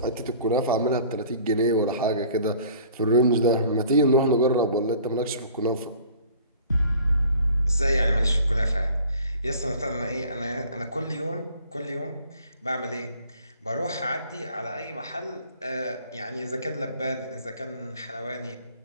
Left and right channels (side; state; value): both; inverted; correlation -0.50